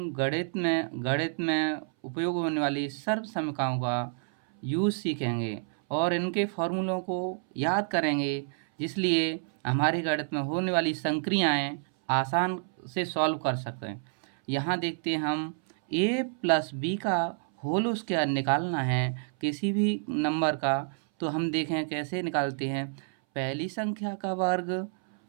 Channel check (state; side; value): silent; left; 59 dB below the other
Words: गणित में उपयोग होने वाली सर्वसमीकरणों का यूज़ सीखेंगे और इनके फॉर्मूलों को याद करेंगे, जिसलिए हमारे गणित में होने वाली संक्रियाएं आसान से सॉल्व कर सकें। यहाँ देखते हैं हम a प्लस बी का होल स्क्वायर निकालना है किसी भी नंबर का। तो हम देखें कैसे निकालते हैं। पहली संख्या का वर्ग